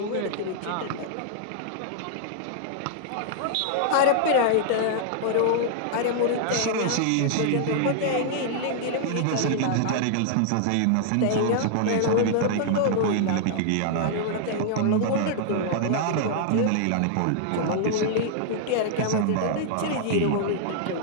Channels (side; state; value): both; different; correlation -0.01